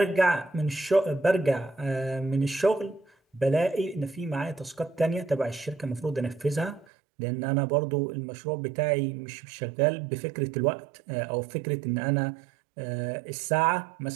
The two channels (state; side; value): drops out; left; at 6.9 s